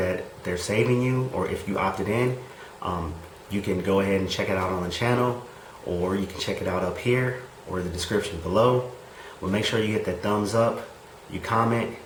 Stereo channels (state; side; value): identical; both; correlation 1.00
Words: they're saving you, or if you opted in, you can go ahead and check it out on the channel, or you can check it out up here or the description below. But make sure you hit that thumbs up, you comment,